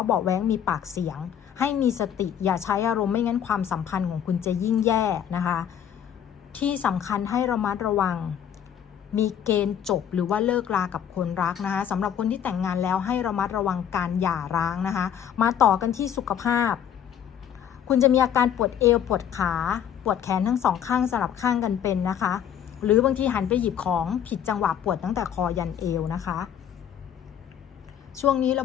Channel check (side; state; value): right; quieter; 9.3 dB